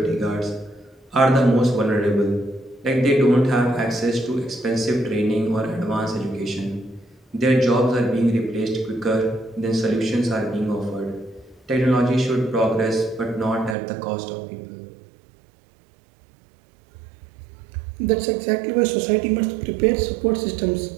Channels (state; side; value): drops out; left; at 13.8 s